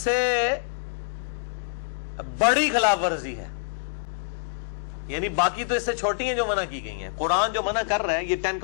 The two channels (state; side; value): silent; right; digital silence